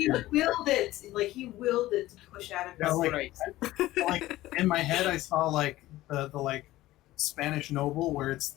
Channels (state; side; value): quieter; right; 16.4 dB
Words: it. Like, he willed it to push out of Yeah, his like, like in my head, I saw like the like Spanish noble where it's